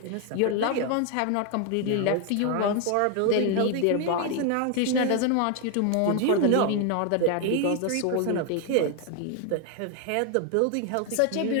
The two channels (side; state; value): both; different; correlation 0.01